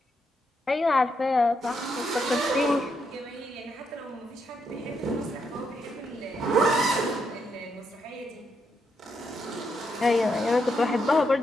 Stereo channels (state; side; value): normal; both; correlation 0.80